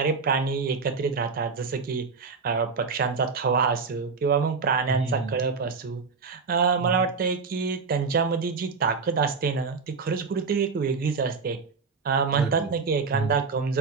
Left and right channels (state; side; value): quieter; left; 4.9 dB